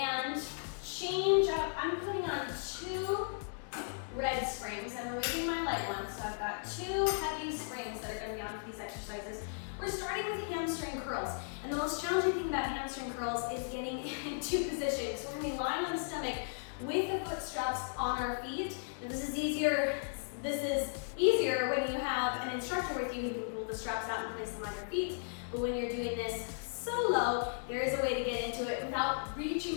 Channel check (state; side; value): silent; right; digital silence